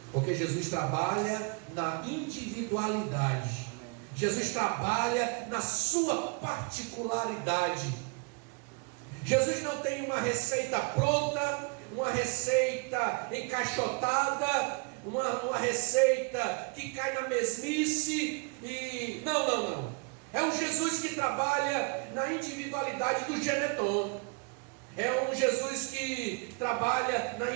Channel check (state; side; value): quieter; left; 34.2 dB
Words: porque Jesus trabalha na individualidade. Jesus trabalha na sua particularidade. Jesus não tem uma receita pronta, uma receita encaixotada, uma receita que cai na mesmice e... Não. É um Jesus que trabalha na individualidade do Geneton. É um Jesus que trabalha na